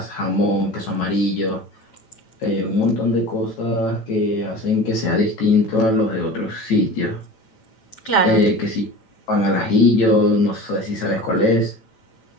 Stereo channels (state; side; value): late; right; 9.0 ms